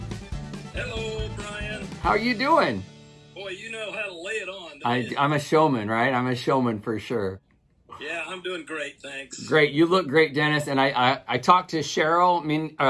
Hello, Brian. How are you doing? Boy, you know how to lay it on. I'm a showman, right? I'm a showman for sure. Yeah, I'm doing great, thanks. Great. You look great, Dennis. And I talked to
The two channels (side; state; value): both; identical; correlation 1.00